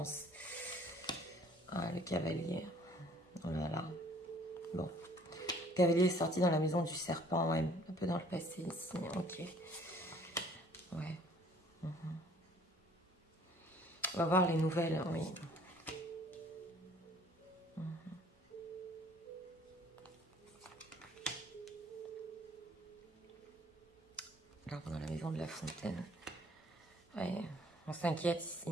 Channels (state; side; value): normal; both; correlation 0.56